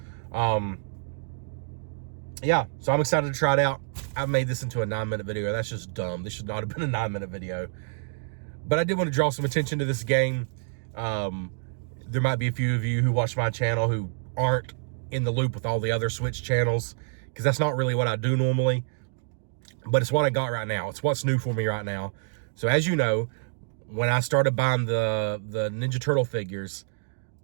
Yeah, so I'm excited to try it out. I've made this into a 9-minute video. That's just dumb. This should not have been a 9-minute video. But I did want to draw some attention to this game. There might be a few of you who watch my channel who aren't in the loop with all the other Switch channels, because that's not really what I do normally. But it's what I got right now. It's what's new for me right now. So as you know, when I started buying the Ninja Turtle figures,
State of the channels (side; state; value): left; silent; digital silence